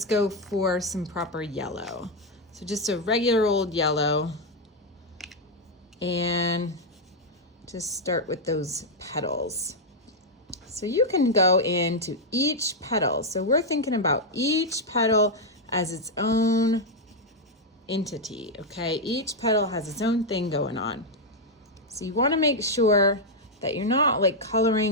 go for some proper yellow. So just a regular old yellow, and just start with those petals. So you can go into each petal. So we're thinking about each petal as its own entity, okay? Each petal has its own thing going on. So you want to make sure that you're not like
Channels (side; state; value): both; normal; correlation 0.00